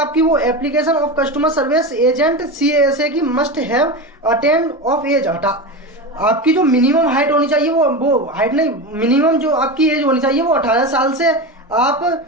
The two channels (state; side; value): normal; both; correlation 0.22